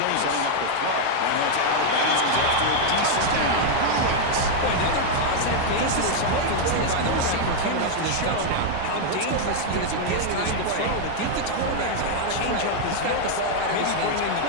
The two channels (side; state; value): both; different; correlation 0.00